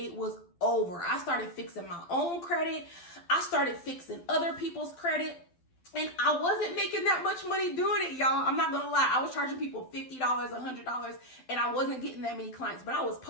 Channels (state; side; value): late; right; 12 ms